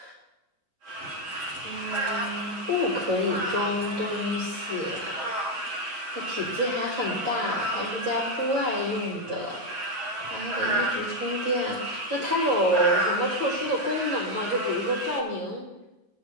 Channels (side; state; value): left; late; 11 ms